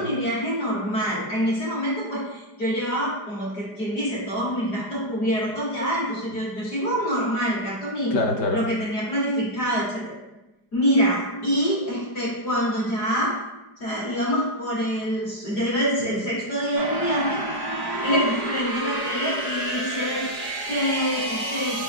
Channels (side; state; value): right; late; 4.9 ms